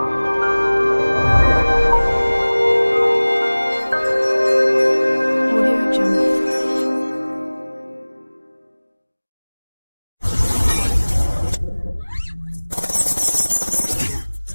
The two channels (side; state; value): both; inverted; correlation -1.00